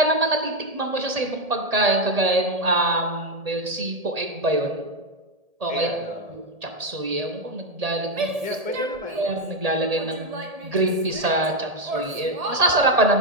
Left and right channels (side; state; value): left; late; 1.8 ms